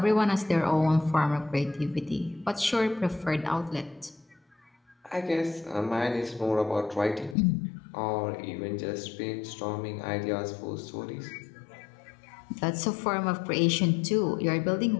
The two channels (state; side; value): drops out; right; at 7.4 s